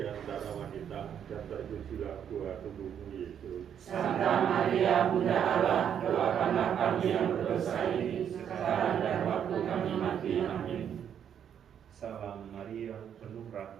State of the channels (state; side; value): quieter; left; 8.8 dB